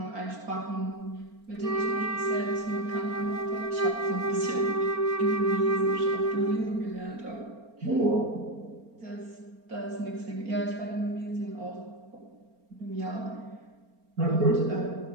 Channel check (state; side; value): late; left; 4.4 ms